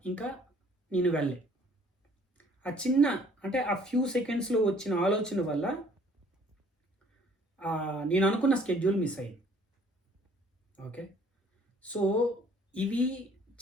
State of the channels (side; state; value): both; normal; correlation 0.58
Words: ఇంకా నేను వెళ్ళే. ఆ చిన్న అంటే ఆ ఫ్యూ సెకండ్స్లో వచ్చిన ఆలోచన వల్ల నేను అనుకున్న స్కెడ్యూల్ మిస్ అయ్యింది. ఓకే. సో ఇవి